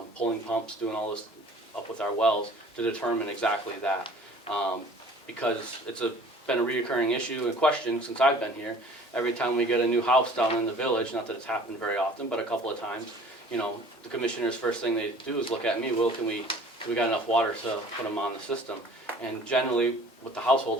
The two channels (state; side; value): normal; both; correlation 0.49